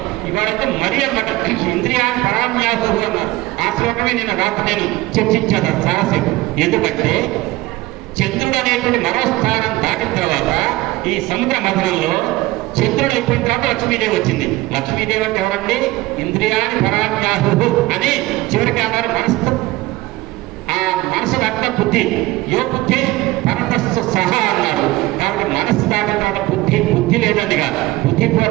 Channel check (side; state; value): left; quieter; 18.9 dB